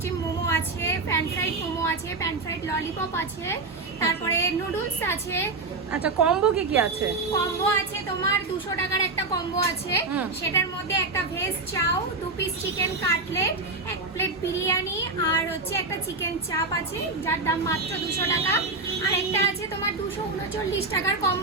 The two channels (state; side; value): quieter; left; 3.6 dB